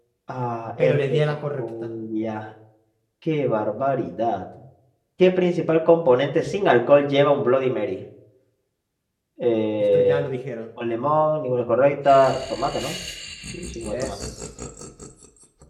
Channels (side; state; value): both; identical; correlation 1.00